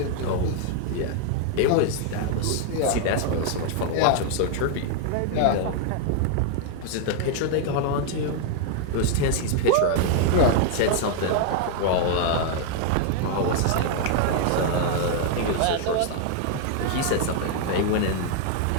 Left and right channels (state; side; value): different; both; correlation 0.00